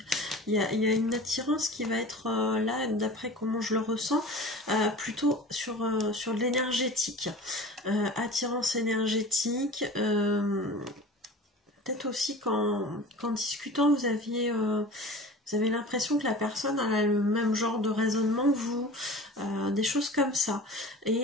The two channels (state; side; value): normal; both; correlation 0.38